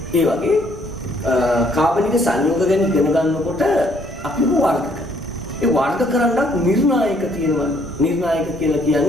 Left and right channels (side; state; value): both; normal; correlation 0.65